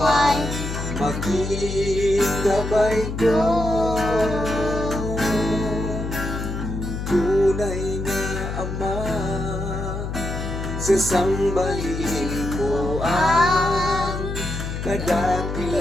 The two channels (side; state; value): left; noise; hum, 5 dB below the sound